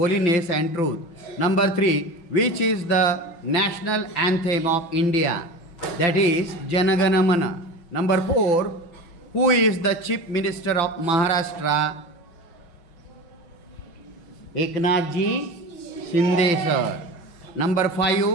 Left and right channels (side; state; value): right; late; 6.0 ms